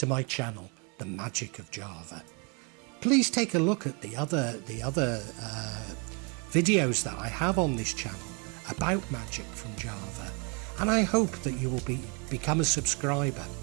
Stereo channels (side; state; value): left; quieter; 33.7 dB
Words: my channel, The Magic of Java. Please take a look at the other videos that I have on this channel about magic from Java, and I hope that you will become a subscriber.